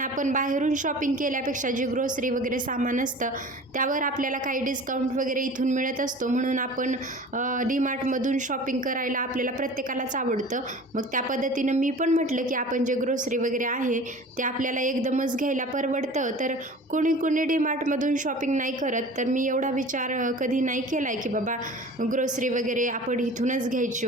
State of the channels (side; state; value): both; normal; correlation 0.41